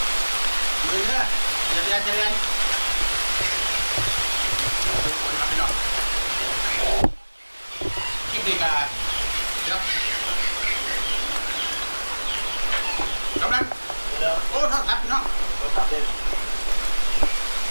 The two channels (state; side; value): inverted; both; correlation -1.00